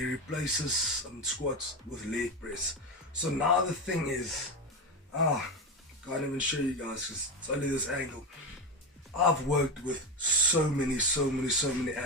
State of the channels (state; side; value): normal; both; correlation 0.16